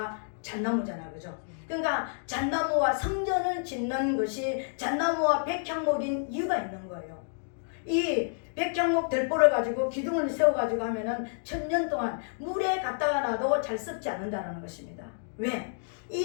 잣나무잖아, 그죠? 그러니까 잣나무와 성전을 짓는 것이 잣나무와 백향목인 이유가 있는 거예요. 이 백향목 들보를 가지고 기둥을 세워가지고 하면은 1000년 동안 물에 갖다가 놔도 잘 썩지 않는다는 것입니다. 왜?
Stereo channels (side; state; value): right; silent; digital silence